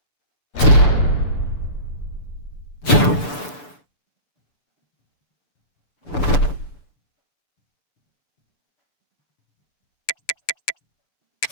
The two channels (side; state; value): right; late; 6.9 ms